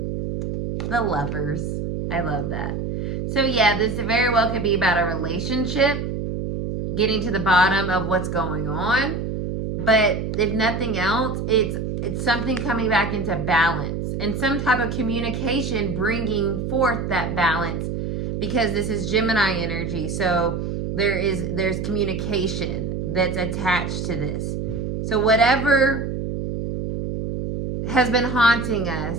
The Lovers. I love that. So yeah, this very well could be about a relationship, getting to the bottom of what's going on. But if nothing else, it's something coming back into balance and some type of communication bringing forth that balance, because this is Gemini energy. So there's communication that's attached to this. So whatever has been haunting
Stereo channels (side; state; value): right; noise; hum, 3 dB below the sound